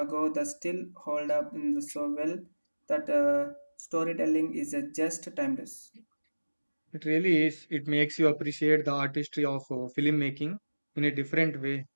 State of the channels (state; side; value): inverted; both; correlation -1.00